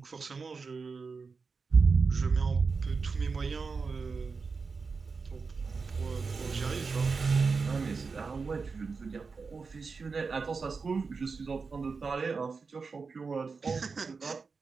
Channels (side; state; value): left; quieter; 4.8 dB